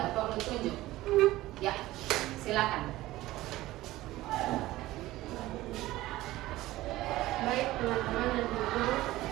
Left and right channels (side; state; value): left; quieter; 16.9 dB